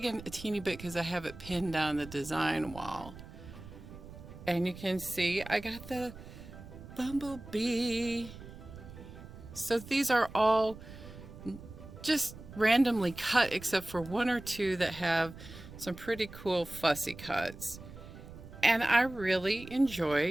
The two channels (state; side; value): noise; right; rumble, 15 dB below the sound